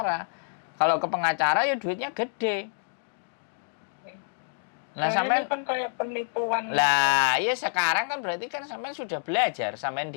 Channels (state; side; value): silent; right; digital silence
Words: Kalau ke pengacara ya duitnya gede. Nah, sampean kan kayak penipuan. lah ya sekarang kan berarti kan sampean sudah belajar, sampean